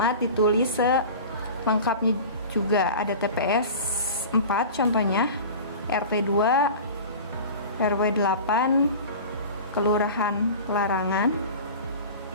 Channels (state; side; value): inverted; both; correlation -0.36